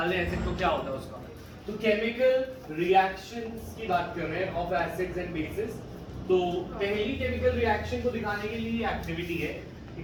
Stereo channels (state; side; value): identical; both; correlation 1.00